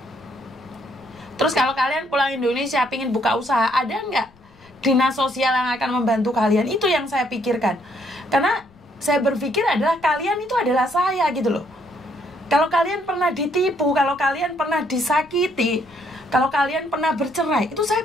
Terus kalau kalian pulang Indonesia, pingin buka usaha, ada nggak dinas sosial yang akan membantu kalian? Itu yang saya pikirkan. Karena saya berpikir adalah kalian itu adalah saya gitu loh. Kalau kalian pernah ditipu, kalau kalian pernah disakiti, kalau kalian pernah bercerai, itu saya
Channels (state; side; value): noise; left; rumble, 28 dB below the sound